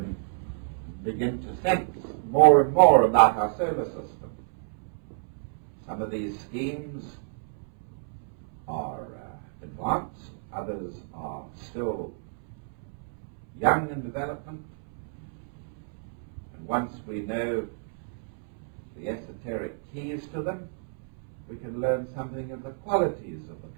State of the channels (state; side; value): silent; left; 58 dB below the other